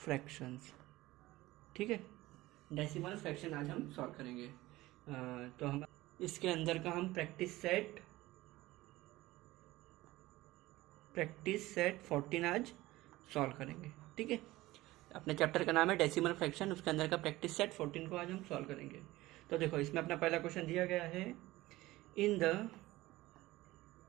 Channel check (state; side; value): quieter; left; 18.1 dB